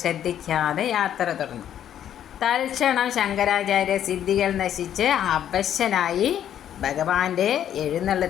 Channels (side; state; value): right; quieter; 10.3 dB